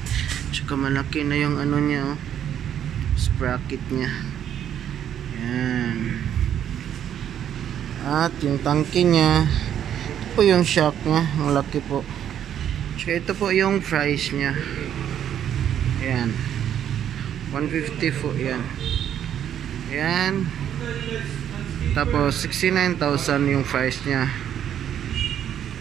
tsaka malaki na yung ano niya, oh, sprocket niya. Yan, at yung tangke niya, ito po yung shock niya, malaki po. Tsaka ito po yung price niya. Yan, 150 po yan. Yan, tapos 69,000 yung price niya.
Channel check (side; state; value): left; quieter; 9.9 dB